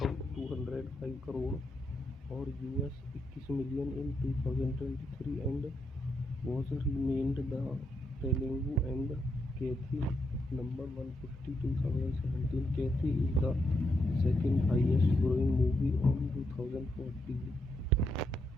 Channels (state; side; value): normal; both; correlation 0.80